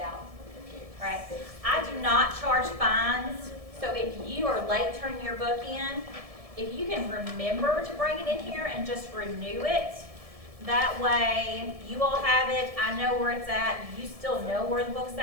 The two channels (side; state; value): left; late; 1.7 ms